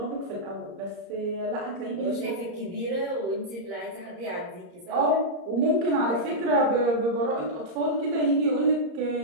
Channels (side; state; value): left; late; 34 ms